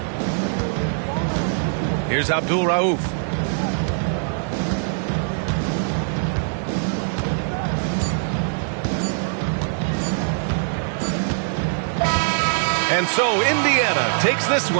Here's Abdul Rauf. And so Indiana takes this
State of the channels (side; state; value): left; silent; 64 dB below the other